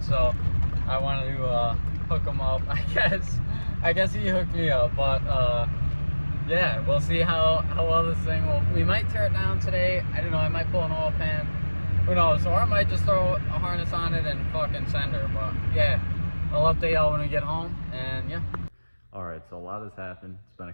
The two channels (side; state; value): both; inverted; correlation -1.00